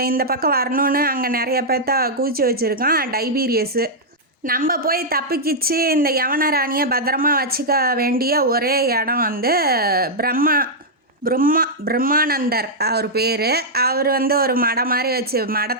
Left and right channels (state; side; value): normal; both; correlation -0.06